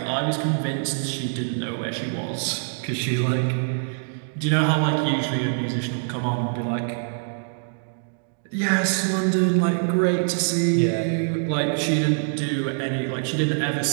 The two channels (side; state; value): left; silent; digital silence